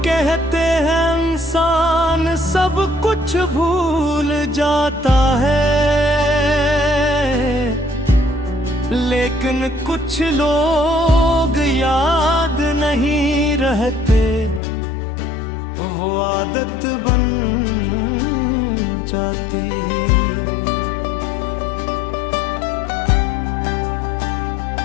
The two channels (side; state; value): right; drops out; at 14.6 s